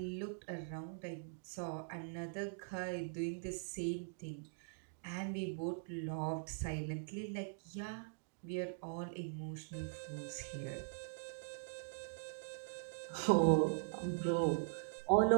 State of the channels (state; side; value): silent; left; digital silence